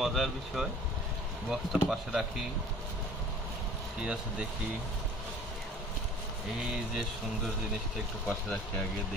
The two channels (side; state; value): both; normal; correlation 0.48